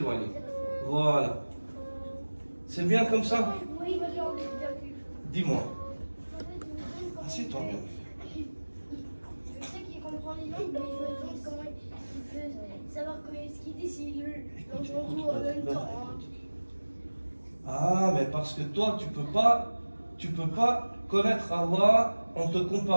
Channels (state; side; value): inverted; both; correlation -1.00